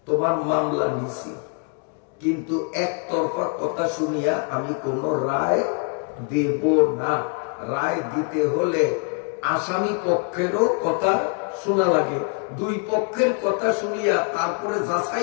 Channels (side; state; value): right; quieter; 39.1 dB